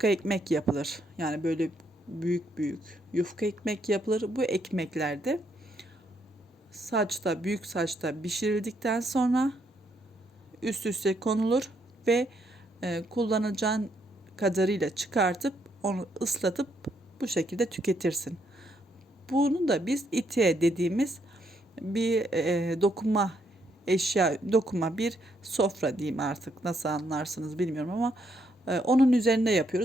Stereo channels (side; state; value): both; normal; correlation 0.74